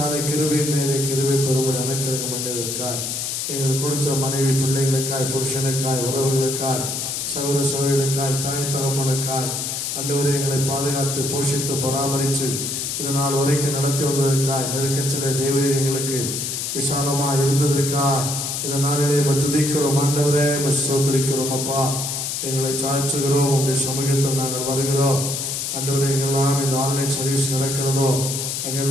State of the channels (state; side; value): noise; left; hiss, 3 dB below the sound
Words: கிருபையின் மேலே கிருபை பெறும்படி அனுக்கிரகம் பண்ணியதற்காய், எங்கள் கொடுத்த மனைவி பிள்ளைகளுக்காய், புருஷனுக்காய், உறவுகளுக்காய், சகோதர சகோதரிகளுக்காய், தாய் தகப்பனுக்காய், ஆண்டவரே எங்களை பாதுகாத்து போஷித்து பராமரித்து இதனால் வரைக்கும் நடத்தி வந்ததற்காய், நெருக்கத்திலே தேவரீர் எங்களுக்கு விசாலமாக இருந்ததற்காய் இந்த நாளிலே துதிக்கிறோம். ஆண்டவரே ஸ்தோத்திரிக்கிறோம். அப்பா, எங்களை சாய்ச்சுகிறோம். உங்களுடைய சமூகத்தில் நாங்கள் வருகிறோம். ஆண்டவரே, எங்கெல்லாம் இந்த ஆன்லைன் சர்வீஸ் நடக்கிறதோ